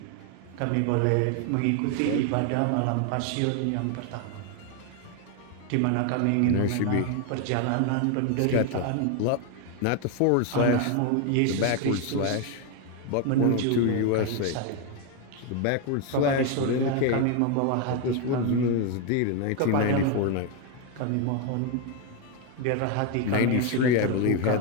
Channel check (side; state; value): both; different; correlation 0.01